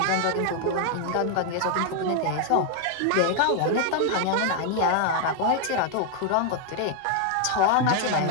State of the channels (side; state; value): both; different; correlation 0.00